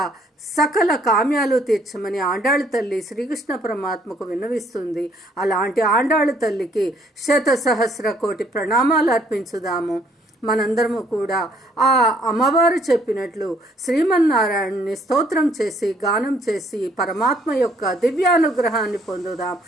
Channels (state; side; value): normal; both; correlation 0.65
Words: సకల కామ్యాలు తీర్చమని ఆండాళ్ తల్లి శ్రీకృష్ణ పరమాత్మకు విన్నవిస్తుంది. అలాంటి ఆండాళ్ తల్లికి 1,000,000 కోటి ప్రణామాలు అర్పించుదాము. మనందరము కూడా ఆ అమ్మవారు చెప్పినట్లు శ్రీమన్నారాయణుని స్తోత్రం చేసి, గానం చేసి పరమాత్మ యొక్క దివ్యానుగ్రహాన్ని పొందుదాం.